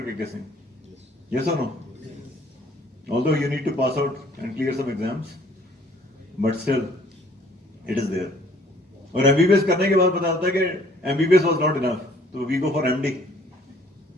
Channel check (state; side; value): normal; both; correlation 0.58